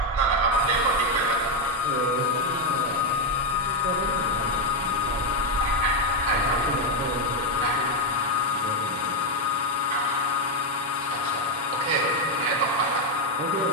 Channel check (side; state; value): both; normal; correlation 0.06